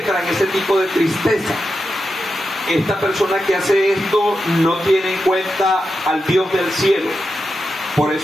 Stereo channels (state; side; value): normal; both; correlation 0.88